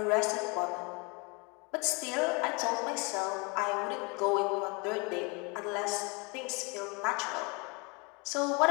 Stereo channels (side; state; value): right; quieter; 30.1 dB